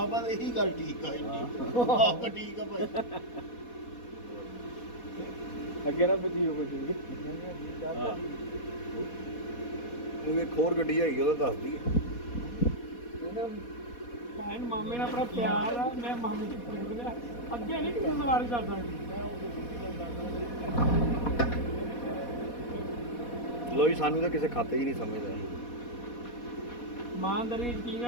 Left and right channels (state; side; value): late; right; 4.2 ms